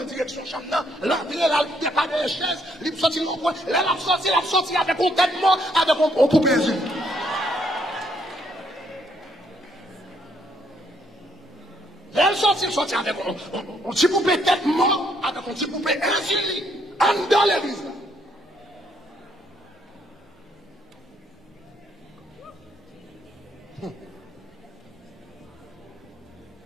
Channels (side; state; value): both; normal; correlation 0.71